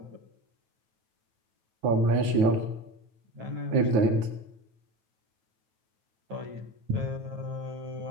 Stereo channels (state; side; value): late; left; 9.4 ms